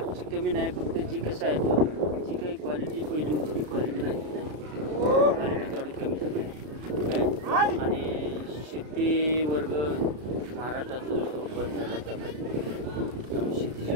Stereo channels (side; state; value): left; late; 33 ms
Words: कमी नाही, फक्त जी कसं आहे जी काही क्वालिटी पहिली होती ती क्वालिटी आहे. क्वालिटी थोडी कमी झाली आहे. आणि शेती वर्ग महाराष्ट्रात बंद झाला. त्यामुळे